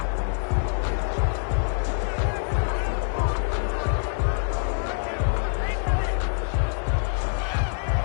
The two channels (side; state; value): right; silent; digital silence